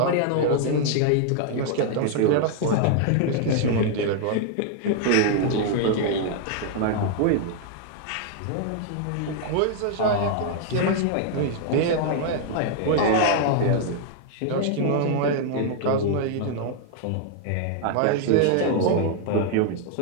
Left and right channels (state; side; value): different; both; correlation 0.00